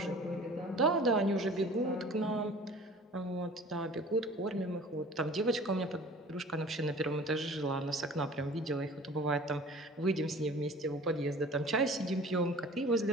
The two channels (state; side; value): normal; both; correlation 0.45